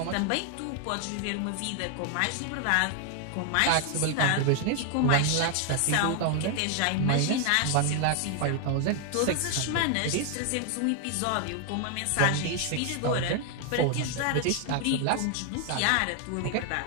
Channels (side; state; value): both; different; correlation 0.00